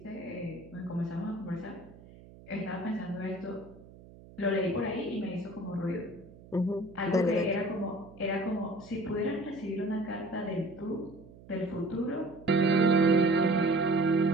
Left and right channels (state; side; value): noise; right; hum, 21 dB below the sound